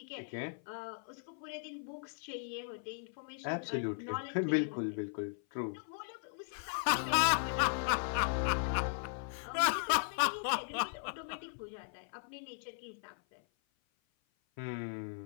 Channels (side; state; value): right; silent; 53 dB below the other